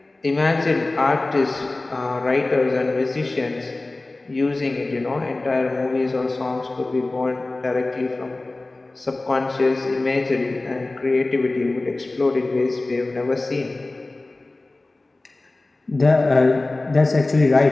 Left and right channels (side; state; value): right; quieter; 3.0 dB